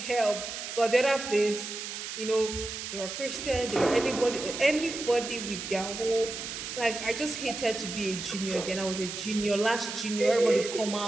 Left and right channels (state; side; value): noise; right; hiss, 7 dB below the sound